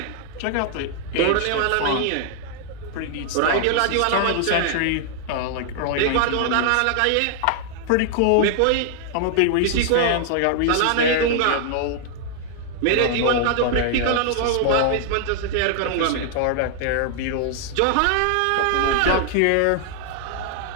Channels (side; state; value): both; different; correlation 0.00